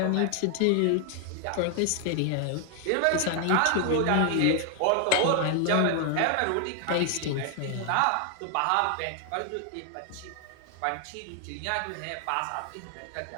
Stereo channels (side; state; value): both; different; correlation 0.00